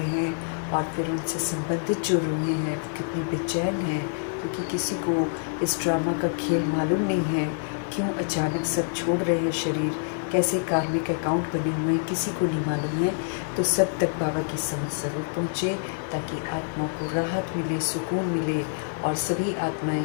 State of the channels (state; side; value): silent; right; digital silence